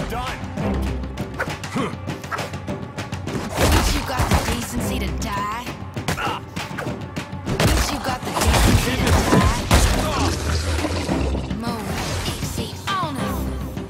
Done. Bitch, you got the decency to die? Bitch, you got the decency to die? Move, easy on it.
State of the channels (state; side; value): identical; both; correlation 1.00